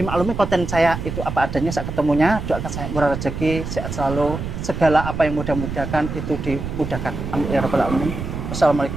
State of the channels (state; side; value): noise; right; rumble, 6 dB below the sound